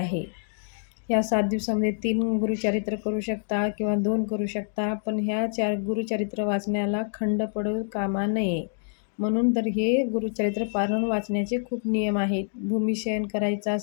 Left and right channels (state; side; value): silent; right; digital silence